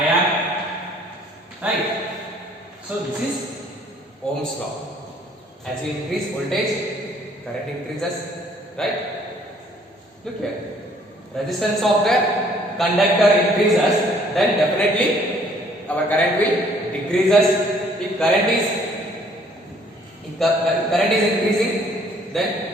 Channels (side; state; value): both; normal; correlation 0.60